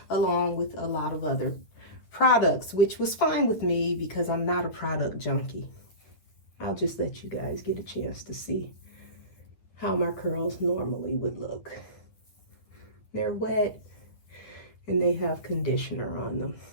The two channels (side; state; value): right; late; 9.8 ms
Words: along with a lot of other products, which was fine with me because I'm not a product junkie. I'll just let you guys get a chance to see how my curls normally would look. They're wet and they have conditioner on them.